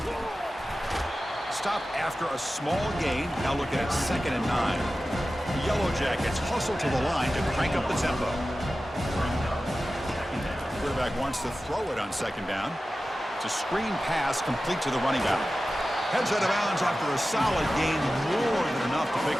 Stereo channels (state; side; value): normal; both; correlation 0.94